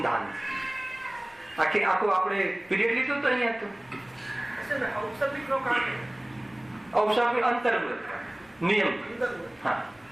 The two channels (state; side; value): noise; left; rumble, 30 dB below the sound